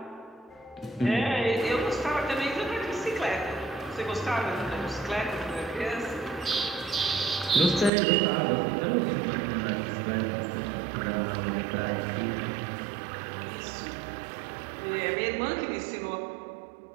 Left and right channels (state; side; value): drops out; left; at 7.9 s